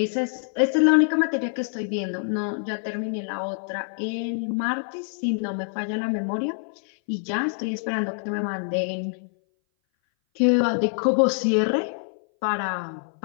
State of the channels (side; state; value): right; silent; 59 dB below the other